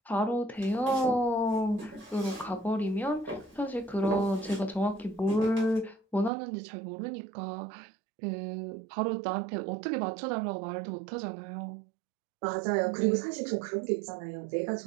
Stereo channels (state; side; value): drops out; left; at 6.3 s